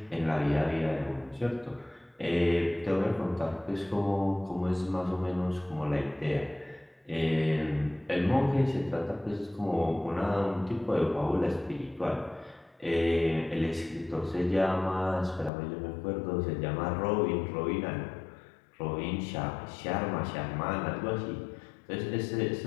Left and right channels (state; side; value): drops out; right; at 15.5 s